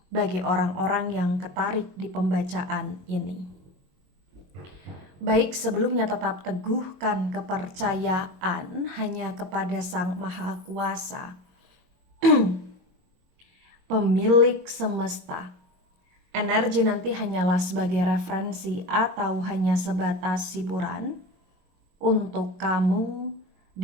bagi orang-orang yang ketarik di pembacaan ini. Baik, sebelumnya tetap teguhkan kepercayaan hanya kepada Sang Maha Kuasa, pemilik semesta. Energi nanti hanyalah sebagai referensi atau hanya sebatas hiburan untuk kamu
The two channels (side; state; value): left; late; 22 ms